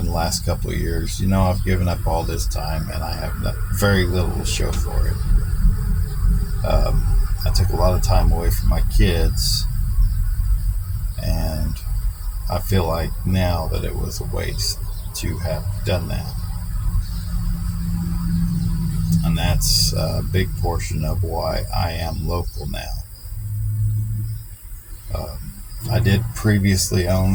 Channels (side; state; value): both; identical; correlation 1.00